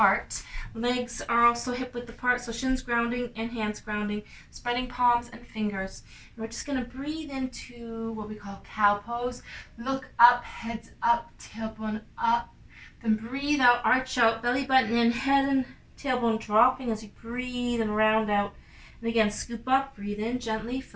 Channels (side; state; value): both; identical; correlation 1.00